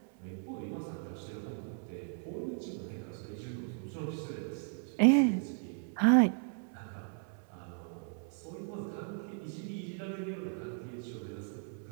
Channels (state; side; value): silent; left; 54 dB below the other